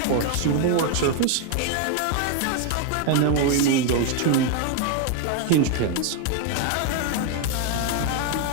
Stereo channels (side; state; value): both; different; correlation 0.01